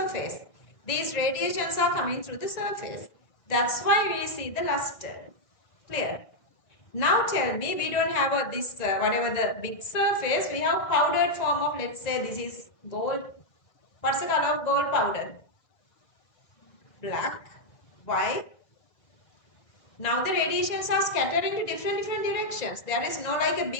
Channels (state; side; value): late; right; 1.8 ms